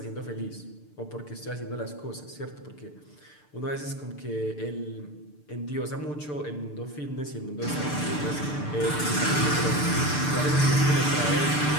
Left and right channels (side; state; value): right; late; 6.8 ms